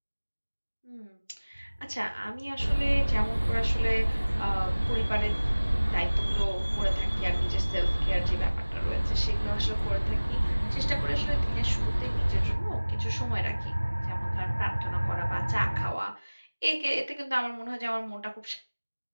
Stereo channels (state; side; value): inverted; both; correlation -1.00